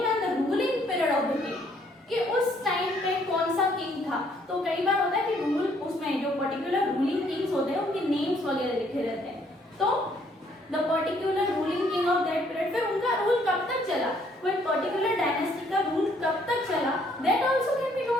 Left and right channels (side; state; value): both; normal; correlation 0.66